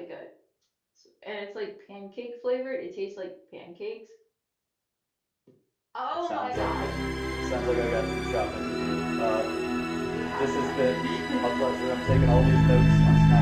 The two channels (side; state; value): both; identical; correlation 1.00